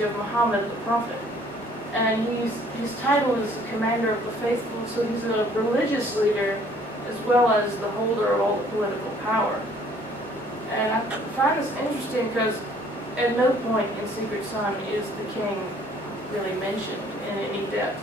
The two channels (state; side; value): normal; both; correlation 0.58